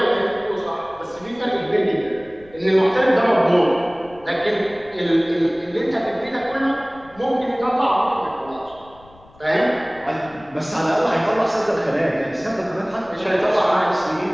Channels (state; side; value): noise; left; rumble, 25 dB below the sound